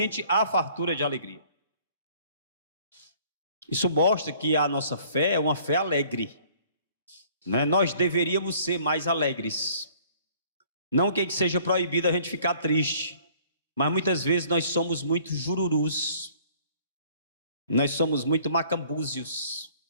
há fartura de alegria. Isso mostra que a nossa fé é uma fé alegre, né? Nós deveríamos ser mais alegres. Não que seja proibido a gente ficar triste, mas muitas vezes nós somos muito jururus, nós somos muito macambúzios,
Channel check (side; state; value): both; inverted; correlation -0.56